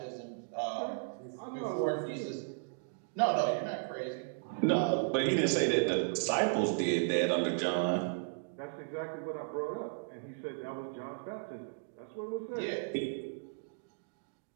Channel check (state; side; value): silent; left; digital silence